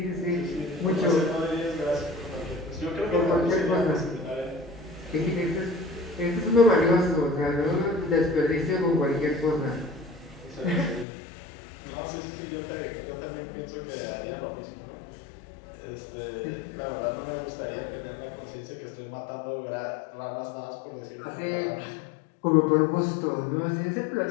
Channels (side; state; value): right; drops out; at 11.1 s